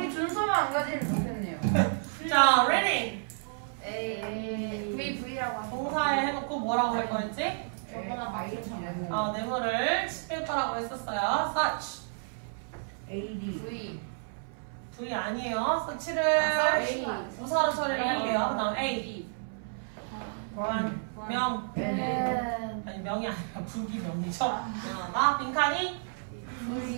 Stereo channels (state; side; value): silent; left; 57 dB below the other